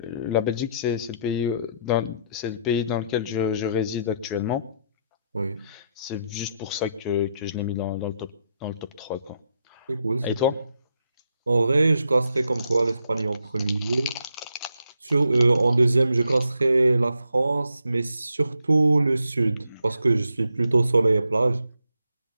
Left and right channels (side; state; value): both; inverted; correlation -0.77